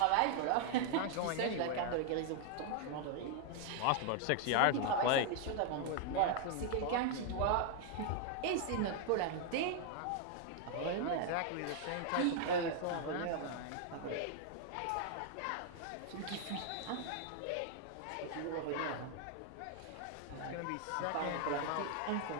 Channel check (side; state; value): both; different; correlation 0.00